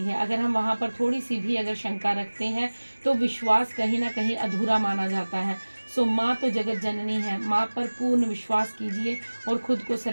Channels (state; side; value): inverted; both; correlation -1.00